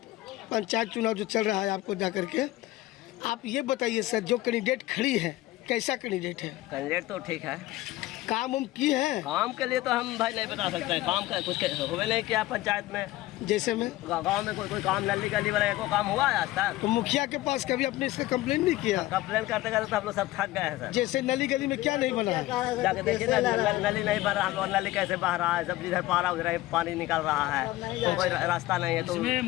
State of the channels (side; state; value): right; quieter; 17.1 dB